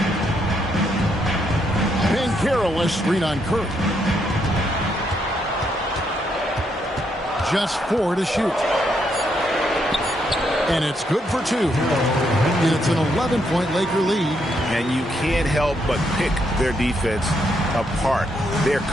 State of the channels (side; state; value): both; normal; correlation 0.76